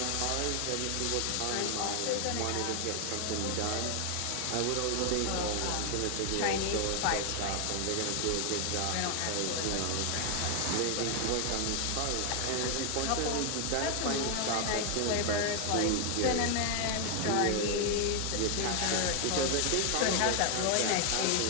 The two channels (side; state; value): both; different; correlation 0.00